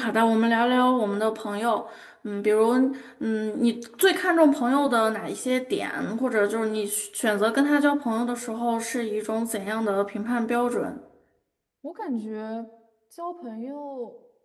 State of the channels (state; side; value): identical; both; correlation 1.00